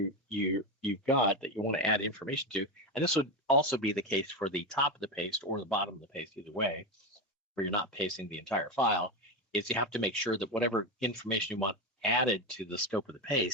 got that you want to add information to, and this would also be the case for the top of the paste or the bottom of the paste, either way, where you're not pasting the entire file, is you have to make sure that whatever information you want added to the scope of the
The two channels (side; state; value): both; normal; correlation 0.15